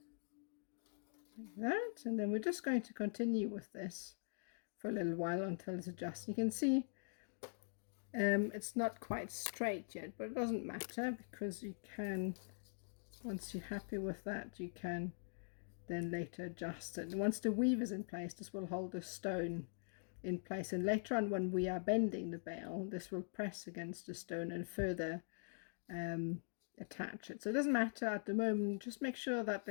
like that, and then we're just going to continue with this for a little while until it's adjusted. You can see it's not quite straight yet, but it doesn't matter because you can, once you're happy with that, you can then later adjust it. And once the weave is in place, this will hold the stone in place, and later on when we are bending the bail, this will press against the stone and further attach it. So it doesn't matter at the moment, just make sure that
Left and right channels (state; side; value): silent; right; digital silence